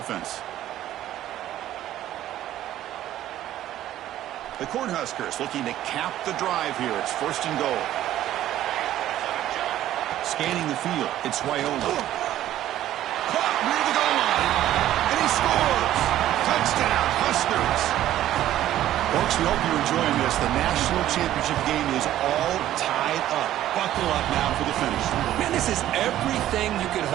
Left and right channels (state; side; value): quieter; left; 13.0 dB